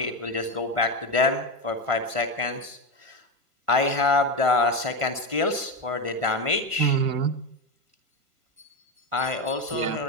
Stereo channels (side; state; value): left; late; 1.5 ms